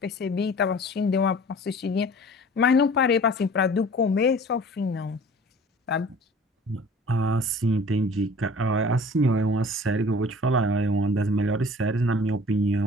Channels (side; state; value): both; normal; correlation 0.46